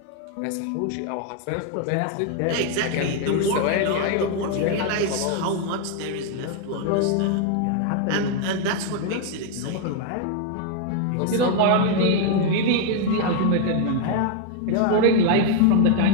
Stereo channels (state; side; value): different; both; correlation 0.01